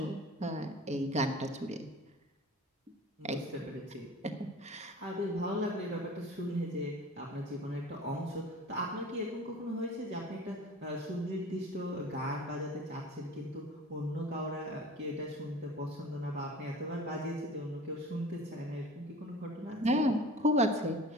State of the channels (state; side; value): normal; both; correlation 0.41